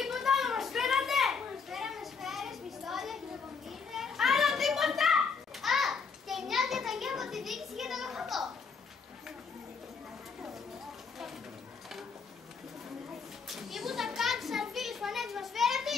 άλλο μας φέρατε! Μας φέραμε σφαίρες, πιστόλια, χειροκομίδες. Άλλο τίποτα! Α, και μια διαταγή από τη διοίκηση για τον οχατό. Τίποτα κάτω, σαρφίλες, φανέτες μας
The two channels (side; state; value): right; quieter; 5.4 dB